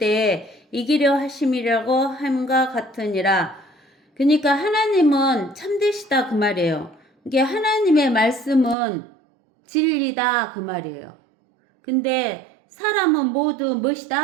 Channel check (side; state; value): left; drops out; at 8.8 s